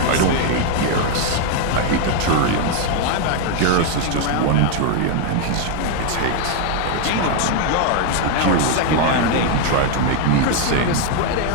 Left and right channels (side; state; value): both; different; correlation 0.00